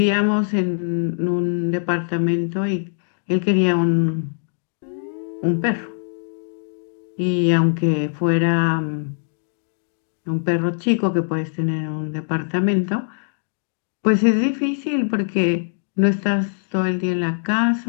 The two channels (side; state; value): right; silent; digital silence